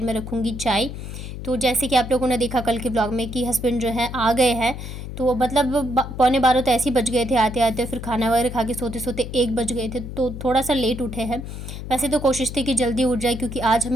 में रखूँगी चाय। तो जैसे कि आप लोगों ने देखा कल के ब्लॉग में कि हस्बैंड जो है आ गए हैं। तो मतलब पौने 12 तो ऐसे ही बज गए थे आते आते, फिर खाना वगैरह खा के सोते सोते 1 बज गए थे। तो थोड़ा सा लेट उठे हैं। वैसे तो कोशिश थी कि जल्दी उठ जाए, क्योंकि आज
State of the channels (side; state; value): left; noise; hum, 9 dB below the sound